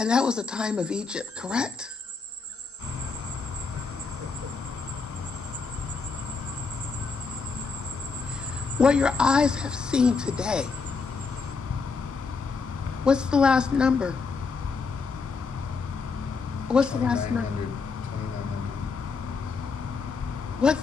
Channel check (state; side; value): quieter; right; 4.8 dB